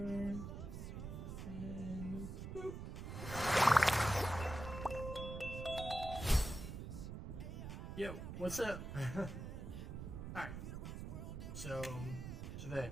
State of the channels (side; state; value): right; noise; rumble, 7 dB below the sound